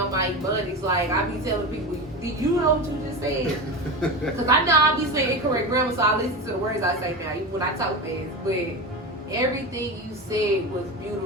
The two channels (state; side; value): normal; both; correlation 0.24